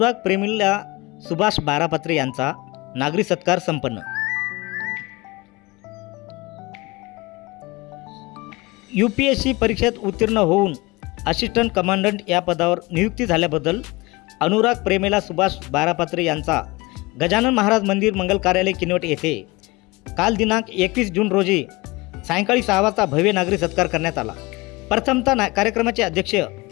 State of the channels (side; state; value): right; quieter; 23.1 dB